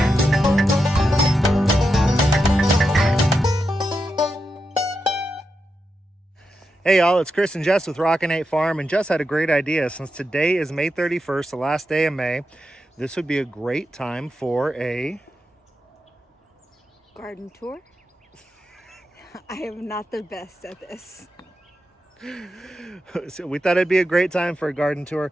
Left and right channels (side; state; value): both; normal; correlation 0.87